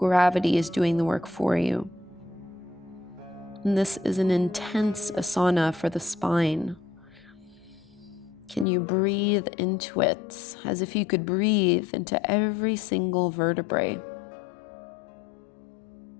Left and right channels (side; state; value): right; drops out; at 8.7 s